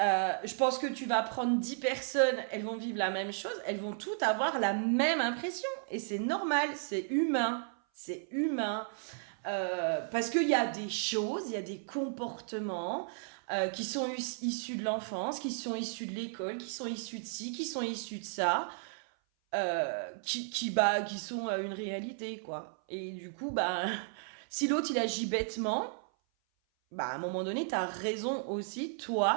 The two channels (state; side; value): silent; left; 55 dB below the other